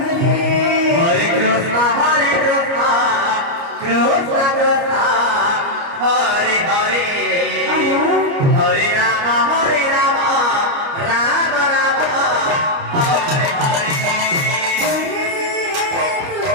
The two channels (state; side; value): late; left; 29 ms